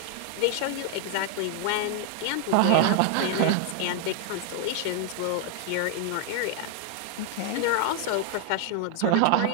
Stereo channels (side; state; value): both; different; correlation 0.00